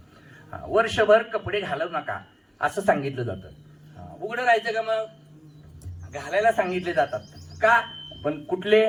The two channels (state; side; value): identical; both; correlation 1.00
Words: वर्षभर कपडे घालू नका असं सांगितलं जातं. उघडं राहायचं का, मग घालायला सांगितले जातात का, पण